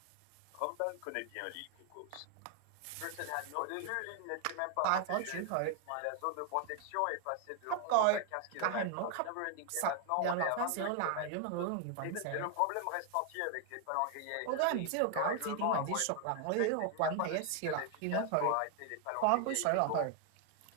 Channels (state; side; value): different; both; correlation 0.00